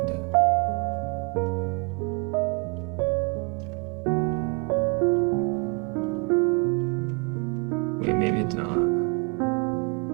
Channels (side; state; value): left; quieter; 33.2 dB